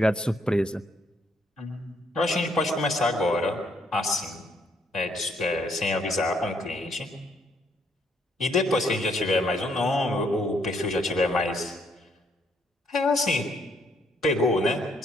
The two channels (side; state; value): both; normal; correlation 0.70